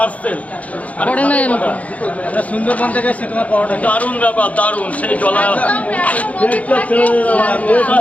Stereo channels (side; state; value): right; late; 0.068 ms